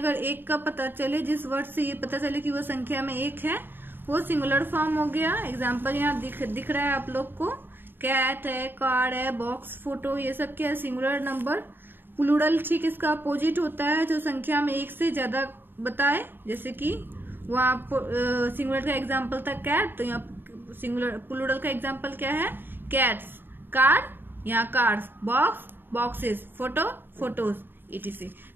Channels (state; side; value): late; left; 0.097 ms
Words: एक का पता चले, जिस वर्ड से ये पता चले कि वो संख्या में एक है, वो सिंगुलर फॉर्म हो गया। एग्जाम्पल यहाँ दिख रहा है आप लोग को, कैट है, कार है, बॉक्स, फोटो, ये सब क्या है, सिंगुलर नंबर। प्लूरल ठीक इसका अपोजिट होता है, जो संख्या में एक से ज्यादा बताए, जैसे कि वहाँ सिंगुलर का एग्जाम्पल था कैट, तो यहाँ सिंगुलर प्लूरल का एग्जाम्पल क्या है, कैट्स, कार, यहाँ cars, box, boxes, photo, photos, etc।